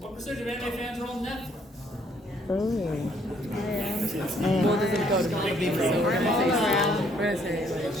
percentage of anime fans are on Netflix? Oh. Well, does it go to maybe so we're gonna say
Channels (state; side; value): normal; both; correlation 0.66